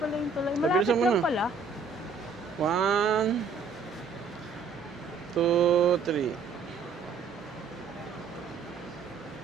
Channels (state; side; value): quieter; left; 4.9 dB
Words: yung tulay. Malapit Pabilisan mo lang na. pala. 1, 2, 3.